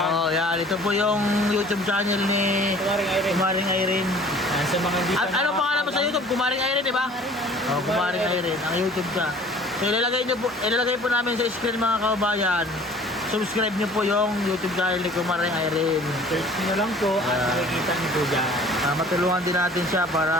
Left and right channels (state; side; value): normal; both; correlation 0.50